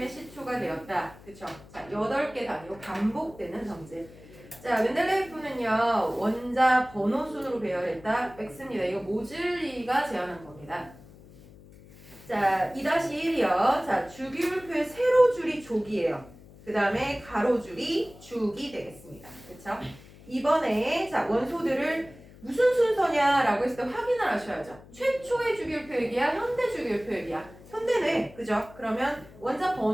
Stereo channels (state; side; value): noise; left; hum, 21 dB below the sound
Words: 시초가 되었다. 그쵸? 자, 8개 단위로 반복되는 성질. 자, 멘델레예프는요. 원자 번호 순으로 배열했다. X입니다. 이거 모즐리가 제안한 겁니다. 자, 2-1이요. 자, 주기율표의 세로줄이 조기예요. 그 다음에 가로줄이 주기 되겠습니다. 그쵸? 이번에 자, 원소들을 무슨 순서냐라고 했을 때 확인을 하셔야죠. 최초의 주기율표액이야? 현대 주기율표액이야? 현대네. 그죠? 그러면 원자